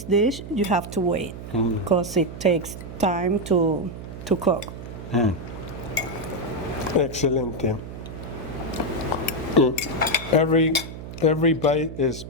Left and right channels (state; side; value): noise; right; hum, 11 dB below the sound